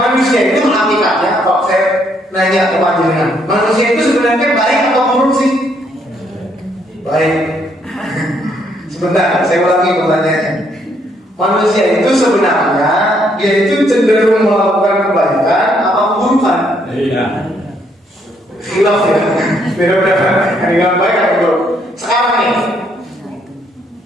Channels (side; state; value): both; normal; correlation 0.71